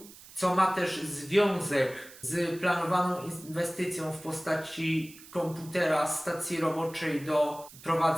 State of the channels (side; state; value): right; noise; hiss, 19 dB below the sound